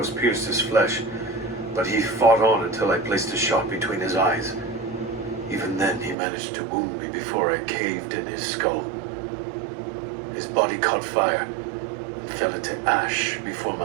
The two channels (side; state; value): left; drops out; at 6.2 s